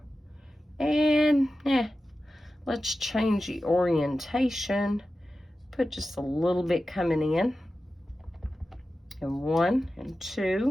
And let's change the orientation. Put just a little bit coming in. And 1 and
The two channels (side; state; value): both; normal; correlation 0.93